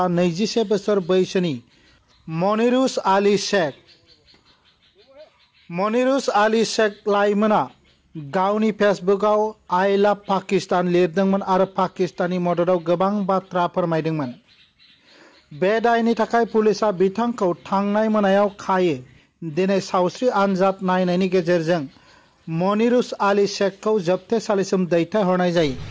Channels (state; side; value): identical; both; correlation 1.00